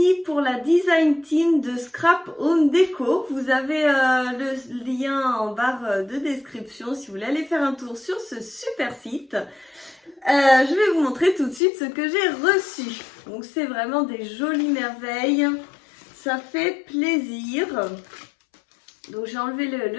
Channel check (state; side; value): drops out; right; at 11.6 s